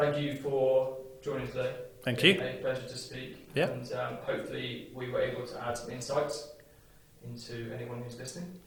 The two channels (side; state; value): both; identical; correlation 1.00